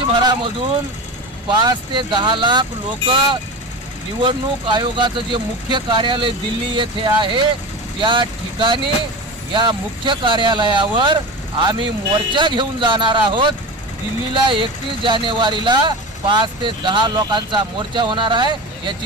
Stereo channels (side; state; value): both; normal; correlation 0.27